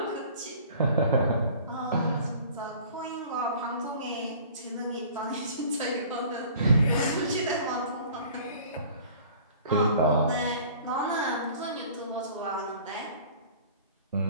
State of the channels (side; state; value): both; inverted; correlation -0.48